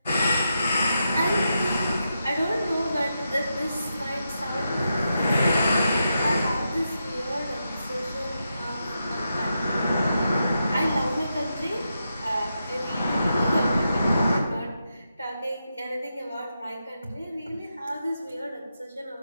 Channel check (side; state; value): both; inverted; correlation -0.86